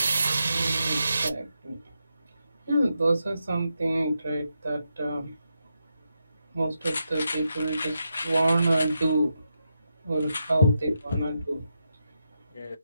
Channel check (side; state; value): both; inverted; correlation -0.85